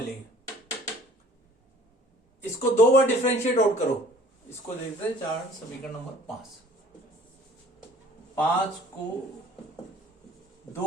इसको 2 बार डिफरेंशिएट आउट करो। इसको देखते हैं चार्ट समीकरण नंबर 5 को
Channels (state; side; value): normal; both; correlation 0.52